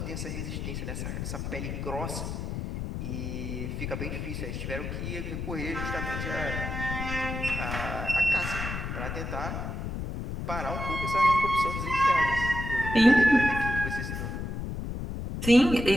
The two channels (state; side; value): noise; left; rumble, 4 dB below the sound